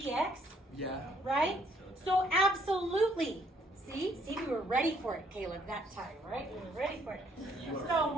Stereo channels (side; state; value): both; normal; correlation 0.66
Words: Yeah. right? So absolutely. See, we were ready for it, Caleb, that time, right? We were ready for it. So